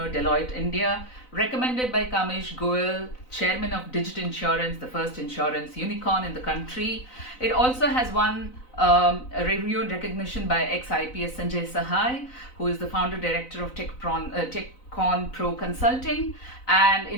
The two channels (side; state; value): right; late; 4.0 ms